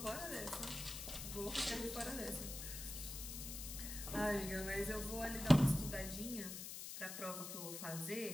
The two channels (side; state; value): left; noise; hiss, 7 dB below the sound